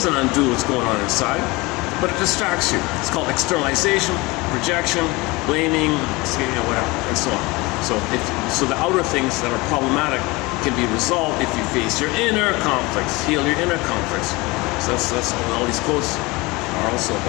undo what's going on inside, but it distracts you. It's called externalization, projection, blaming, whatever, and so on. So the outer things that are problematic can be resolved if you face your inner conflicts, heal your inner conflicts. So that's what all these quotes are also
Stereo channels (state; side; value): quieter; right; 23.4 dB